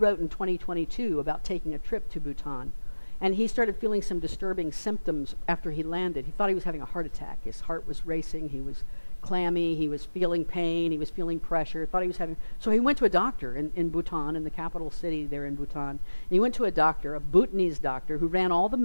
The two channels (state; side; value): inverted; both; correlation -1.00